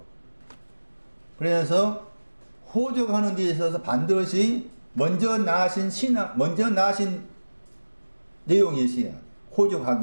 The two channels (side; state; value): both; inverted; correlation -1.00